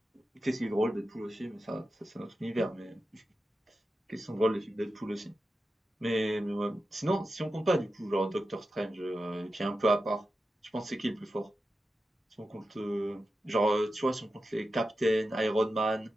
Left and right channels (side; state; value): both; normal; correlation 0.91